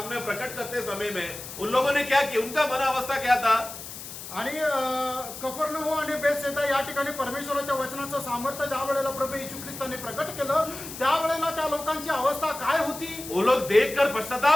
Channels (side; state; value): left; noise; hiss, 11 dB below the sound